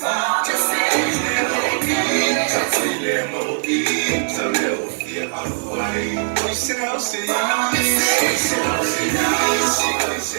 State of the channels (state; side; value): silent; left; digital silence